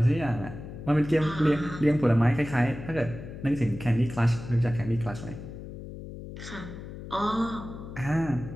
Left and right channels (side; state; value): left; noise; hum, 11 dB below the sound